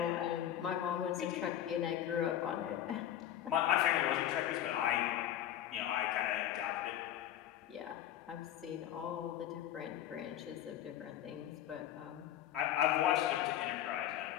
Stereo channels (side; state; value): right; quieter; 11.6 dB